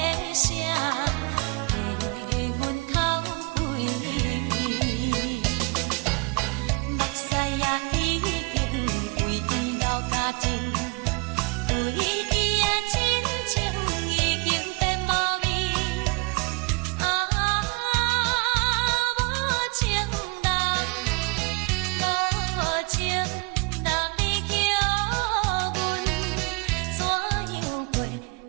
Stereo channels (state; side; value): quieter; left; 29.9 dB